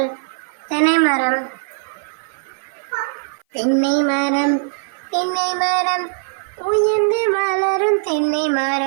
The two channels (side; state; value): left; silent; 57 dB below the other